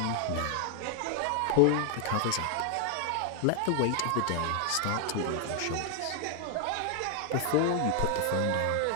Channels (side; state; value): both; different; correlation 0.00